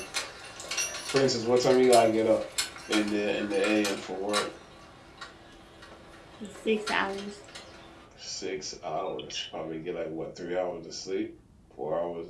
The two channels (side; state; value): both; identical; correlation 1.00